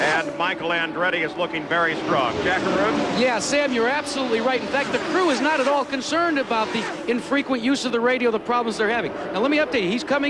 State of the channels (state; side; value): identical; both; correlation 1.00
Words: And Michael Andretti is looking very strong. Jackaroo? Yeah, Sam, you're absolutely right. In fact, the crew is not at all concerned about the infrequent use of the radio, the problems they're having. Now, let me update you. He's